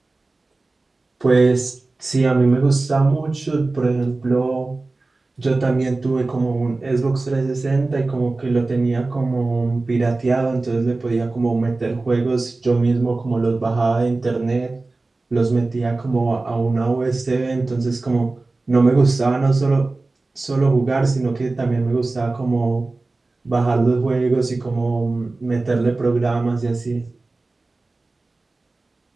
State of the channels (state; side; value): quieter; left; 3.3 dB